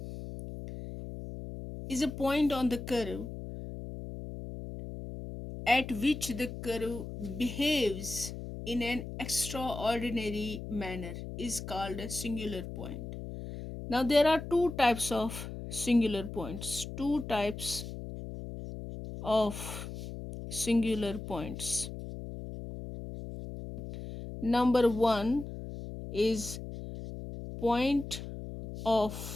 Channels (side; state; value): left; noise; hum, 9 dB below the sound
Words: is a point on the curve at which the curve behaves in an extraordinary manner is called a singular point. Now there are two types of singular points. Two types of singular points. Number one is point